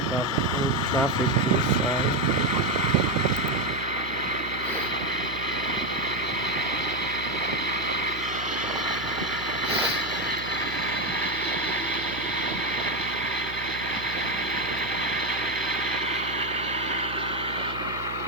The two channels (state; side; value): noise; right; hum, 11 dB below the sound